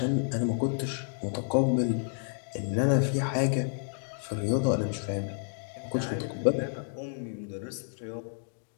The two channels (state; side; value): silent; right; digital silence